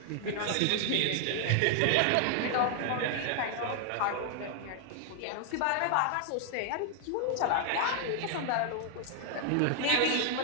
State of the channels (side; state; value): both; different; correlation 0.00